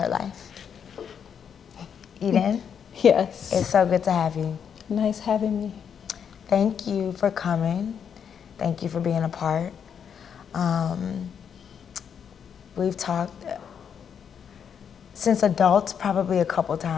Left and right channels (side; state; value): right; quieter; 7.6 dB